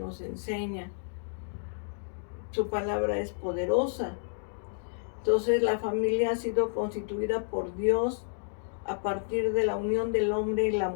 enseña. Su palabra es poderosa. Entonces la familia ha sido constituida por Dios a partir de la unión del hombre y la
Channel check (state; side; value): silent; right; digital silence